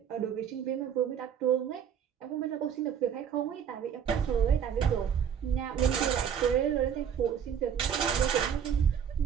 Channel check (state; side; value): quieter; left; 8.2 dB